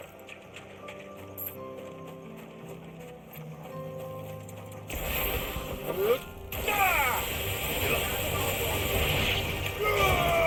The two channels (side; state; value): both; identical; correlation 1.00